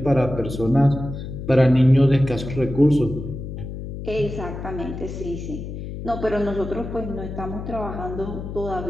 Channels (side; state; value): left; noise; hum, 8 dB below the sound